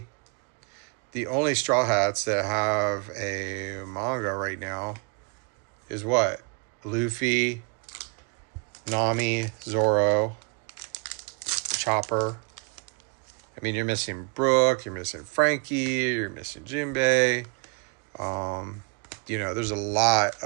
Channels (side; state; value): left; quieter; 35.2 dB